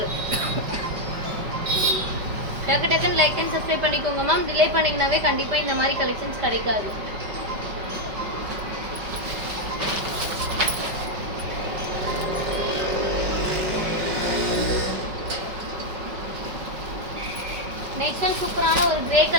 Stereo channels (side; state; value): left; late; 5.0 ms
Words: டக்கு டக்குன்னு லைக் அண்ட் சப்ஸ்கிரைப் பண்ணிக்கோங்க மேம். டிலே பண்ணிங்கனாவே கண்டிப்பாக இந்த மாதிரி கலெக்ஷன்ஸ் கிடைக்காது. நெக்ஸ்ட் ஒன் சூப்பரான ஒரு grey